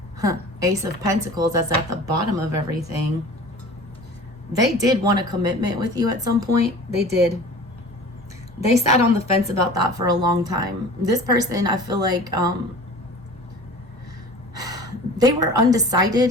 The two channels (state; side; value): normal; both; correlation 0.41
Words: Ace of Pentacles, that's at the bottom of everything. They did want a commitment with you at some point. They did. They sat on the fence about that for a long time. This person, I feel like, they were